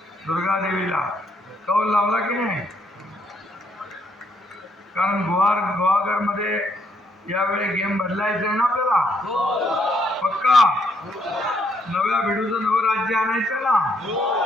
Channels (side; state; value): both; normal; correlation 0.73